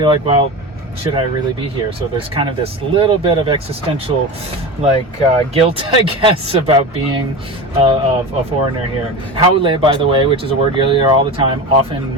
like, well, should I really be here? So there's kind of this little bit of existential guilt, I guess, about being a foreigner here. Haole, by the way, which is a word you'll hear all the time, often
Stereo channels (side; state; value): both; normal; correlation 0.27